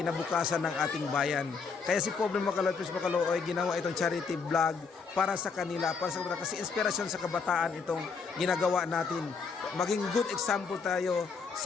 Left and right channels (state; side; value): quieter; right; 5.2 dB